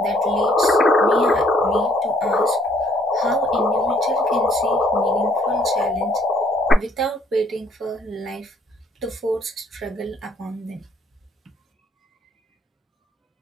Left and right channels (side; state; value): both; normal; correlation 0.65